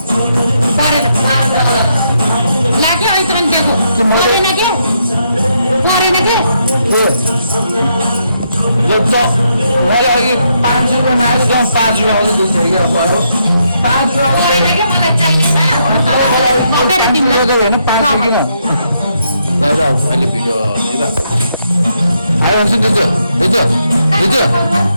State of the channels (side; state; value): both; inverted; correlation -0.78